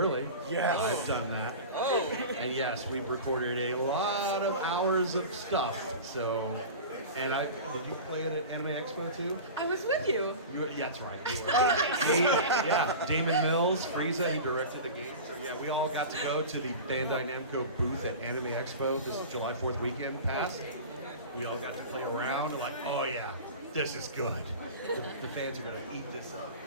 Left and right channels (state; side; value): inverted; both; correlation -0.33